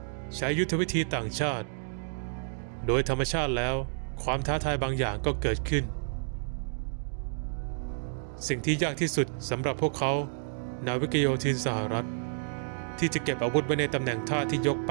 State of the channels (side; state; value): left; silent; digital silence